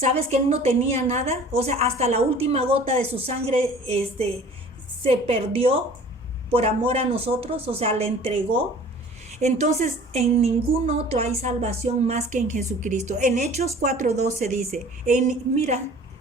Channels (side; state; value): both; normal; correlation 0.47